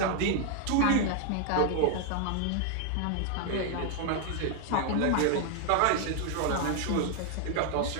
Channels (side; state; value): both; different; correlation 0.00